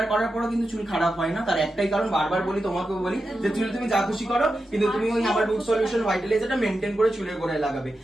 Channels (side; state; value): both; normal; correlation 0.90